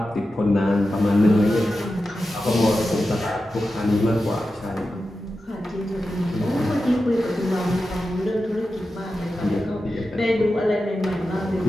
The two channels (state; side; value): normal; both; correlation 0.92